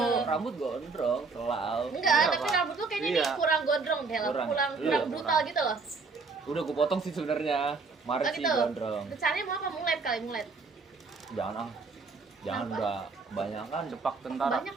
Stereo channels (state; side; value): quieter; left; 4.3 dB